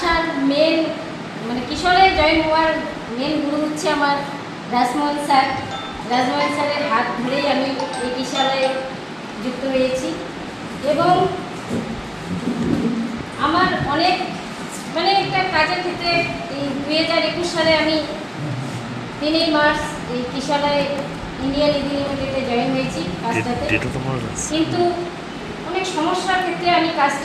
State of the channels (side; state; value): both; identical; correlation 1.00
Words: মেন মানে কিশোরালয়ে জয়েন হওয়ার মেন গুরু হচ্ছে আমার রাজমোহন স্যার। রাজমোহন স্যারের হাত ধরেই আমি এই কিশোরালয়ে যুক্ত হয়েছি এবং আমার অনেক মানে একটা কাজের ক্ষেত্রে এই 2021 সালে আমি 3 মার্চ এই কিশোরালয় ইন্ডিয়ান ইদি লিমিটেডে জয়েন হয়েছি কাজটাতে। কিন্তু অনেক সমস্যার ক্ষেত্রে আমি